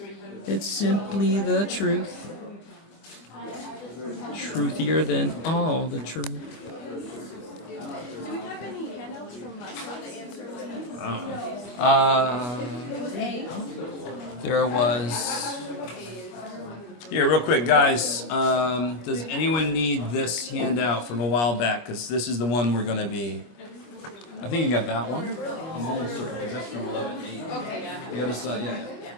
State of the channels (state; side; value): late; right; 25 ms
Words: It's simply the truth. Truthier than all the truth. Do we have any handouts from last time, the answers? It was A. There was. Here, real quick, guys. Does anyone need this handout from a while back? Because this is the one we're going to be. I think you got that one. I'm almost certain because that's from 11:8. Okay. You got this, yeah.